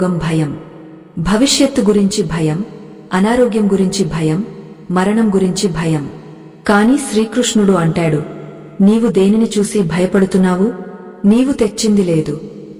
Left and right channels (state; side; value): identical; both; correlation 1.00